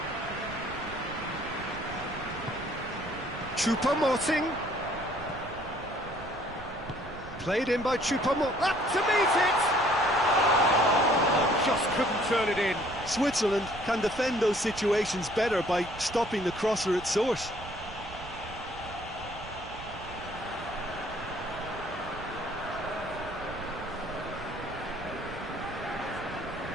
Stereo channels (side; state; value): right; noise; rumble, 14 dB below the sound